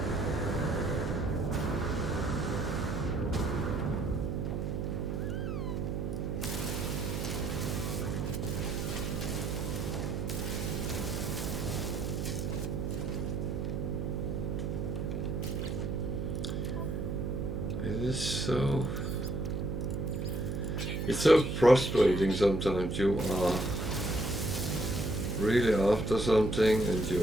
It's so frustrating sometimes. You are really after something and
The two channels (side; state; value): right; noise; hum, 2 dB below the sound